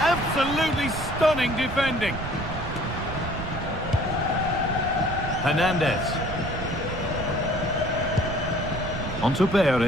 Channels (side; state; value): right; noise; rumble, 7 dB below the sound